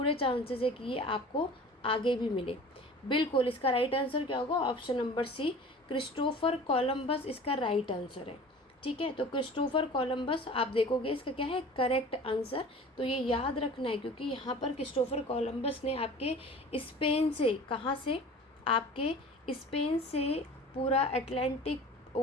चांसेस है कि ये आपको आगे भी मिले। बिल्कुल, इसका राइट आंसर क्या होगा, option number C, Christopher Columbus इसका राइट आंसर है। ठीक है, तो क्रिस्टोफर कोलंबस आप देखोगे इसका क्या है करेक्ट आंसर। तो ये याद रखना है क्योंकि यहाँ पर क्रिस्टोफर कोलंबस ने आपके स्पेन से, कहाँ से, आपके स्पेन से पूरा अटलांटिक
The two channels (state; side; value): normal; both; correlation 0.41